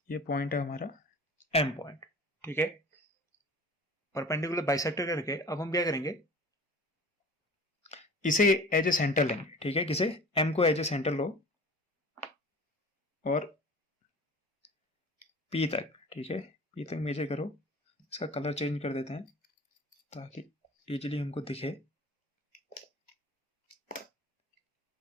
ये पॉइंट है हमारा एम पॉइंट। ठीक है, परपेंडिकुलर बाइसेक्टर करके अब हम क्या करेंगे, इसे एज ए सेंटर लेंगे। ठीक है, किसे, एम को एज ए सेंटर लो और पी तक, ठीक है, पी तक मेजर करो। इसका कलर चेंज कर देते हैं ताकि इजीली हमको दिखे।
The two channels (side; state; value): both; normal; correlation 0.42